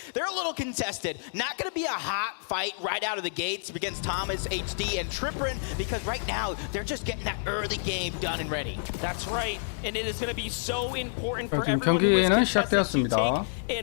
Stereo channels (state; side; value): silent; right; digital silence